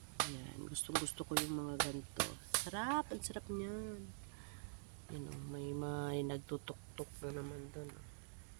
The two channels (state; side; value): silent; left; digital silence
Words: Ayan, gusto ko yung mga ganito. Sarap, ang sarap niyan. May nagtutok-tok na naman doon.